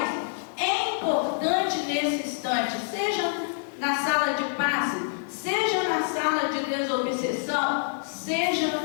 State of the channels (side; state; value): right; silent; digital silence